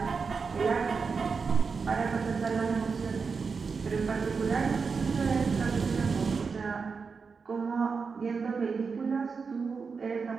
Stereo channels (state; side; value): quieter; left; 5.2 dB